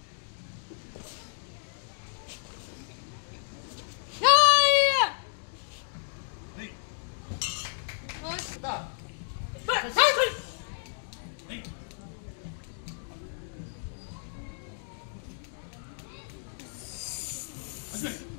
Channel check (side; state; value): right; silent; digital silence